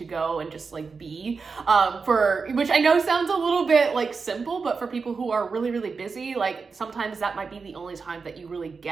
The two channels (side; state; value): left; quieter; 4.9 dB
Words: go and just like be, which I know sounds a little bit like simple, but for people who are really, really busy, like sometimes that might be the only time that you really